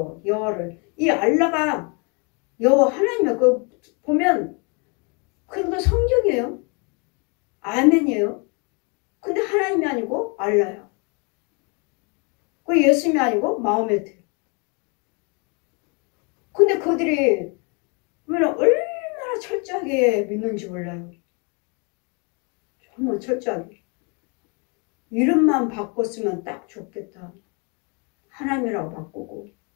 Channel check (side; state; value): right; quieter; 33.8 dB